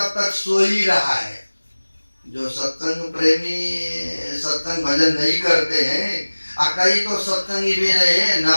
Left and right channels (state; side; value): inverted; both; correlation -1.00